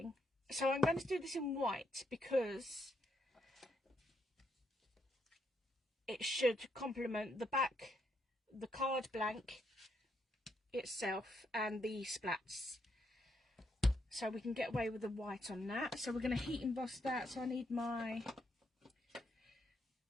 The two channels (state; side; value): normal; both; correlation 0.77